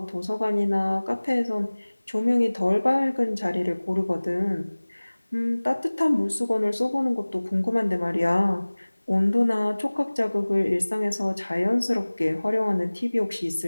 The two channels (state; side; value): inverted; both; correlation -1.00